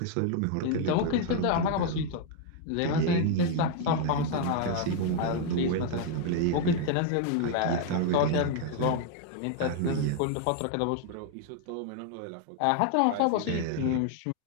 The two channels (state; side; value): different; both; correlation 0.00